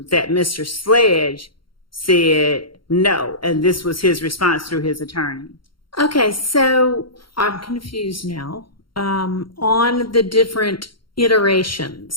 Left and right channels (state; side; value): late; right; 0.73 ms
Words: that Mr. Sledge said no, and this was his response through his attorney. Okay, so I'm confused now. On the different